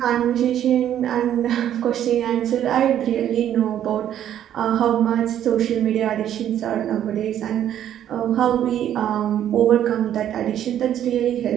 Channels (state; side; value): quieter; left; 10.7 dB